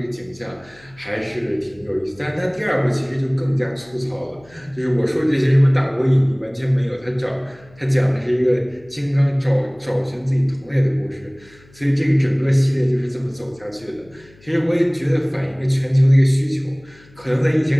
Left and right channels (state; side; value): noise; left; hum, 27 dB below the sound